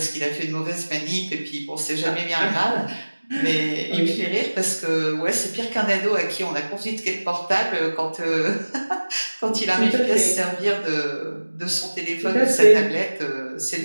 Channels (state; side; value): inverted; both; correlation -1.00